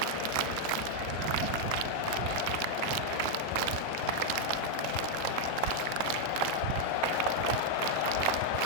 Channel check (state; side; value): different; both; correlation 0.00